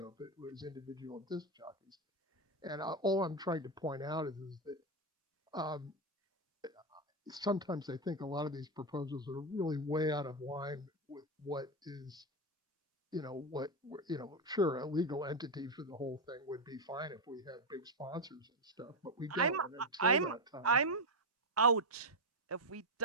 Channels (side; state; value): both; normal; correlation 0.07